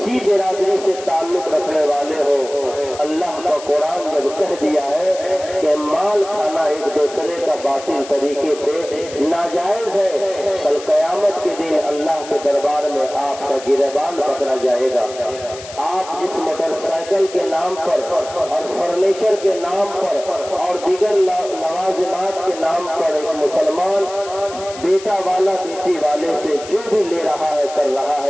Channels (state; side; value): noise; left; hiss, 15 dB below the sound